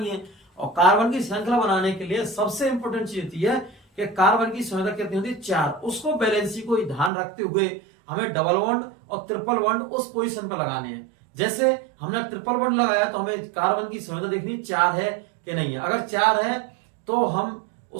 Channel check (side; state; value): left; drops out; at 7.1 s